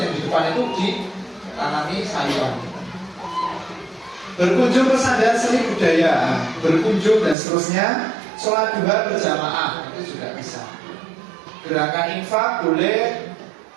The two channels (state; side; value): drops out; left; at 7.4 s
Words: di depan itu ditanami sayuran. Berkunjung ke sandal seni budaya, berkunjung dan seterusnya. Sholat duha berjamaah itu juga bisa. Gerakan infak boleh,